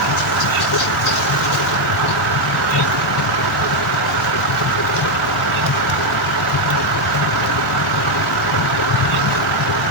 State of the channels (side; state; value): both; normal; correlation 0.03